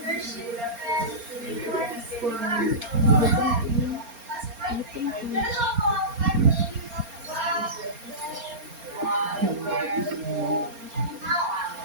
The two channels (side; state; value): left; late; 4.3 ms